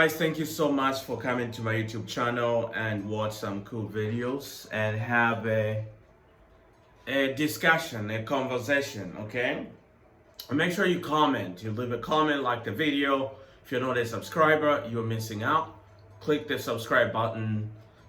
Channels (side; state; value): both; identical; correlation 1.00